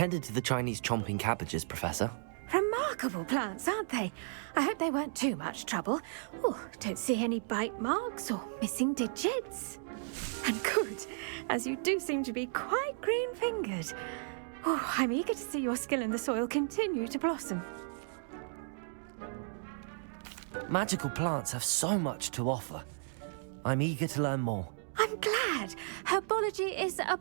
to the Chinese chomping cabbages, Professor. Remarkable plants, aren't they? I hope they weren't too much trouble. Oh, don't see any bite marks or missing digits. And good, as you do seem to be quite green-fingered. Oh, I'm eager to see your skill in the soil continue to blossom. Magical plants have so much to offer. I'm eager to learn more. I'm glad. Herbology is a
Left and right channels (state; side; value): silent; left; digital silence